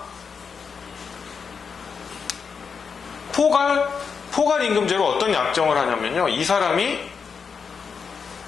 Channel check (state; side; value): quieter; right; 5.9 dB